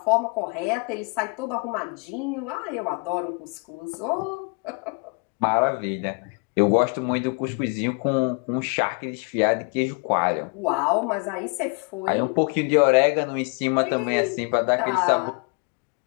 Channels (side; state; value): right; quieter; 34.8 dB